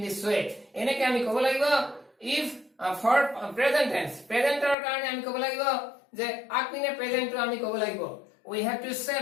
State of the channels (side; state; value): right; drops out; at 4.8 s